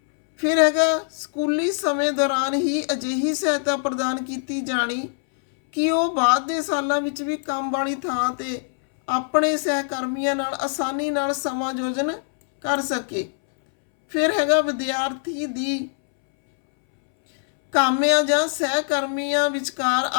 ਫਿਰ ਹੈਗਾ ਸਕੂਲੀ ਸਮੇਂ ਦੌਰਾਨ ਹੀ ਅਜਿਹੀ ਸਹਾਇਤਾ ਪ੍ਰਦਾਨ ਕੀਤੀ ਜਾਣੀ ਕਿ ਉਹ ਬਾਅਦ ਦੇ ਸਾਲਾਂ ਵਿੱਚ ਵੀ ਕੰਮ ਵਾਲੀ ਥਾਂ ਤੇ ਆਪਣੇ ਸਹਿਕਰਮੀਆਂ ਨਾਲ ਆਸਾਨੀ ਨਾਲ ਸਮਾਯੋਜਨ ਕਰ ਸਕੇ। ਫਿਰ ਹੈਗਾ ਵਿਦਿਆਰਥੀ ਦੀ ਕਾਮਿਆਂ ਜਾਂ ਸਹਿਕਰਮੀਆਂ ਵਿਚਕਾਰ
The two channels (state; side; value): silent; right; 63 dB below the other